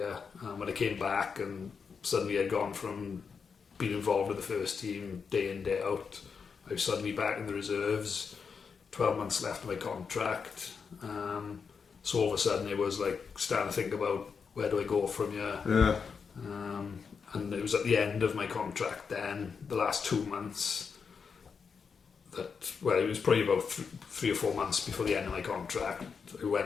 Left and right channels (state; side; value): quieter; right; 5.8 dB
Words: When I came back and suddenly I'd gone from being involved with the first team day in, day out. I was suddenly back in the reserves, 12 months left of my contract. So all of a sudden it was like starting to think about, where do I go from here? Yeah. And it was at the end of my contract then, the last 2 months, it was probably about 3 or 4 months before the end of my contract. I went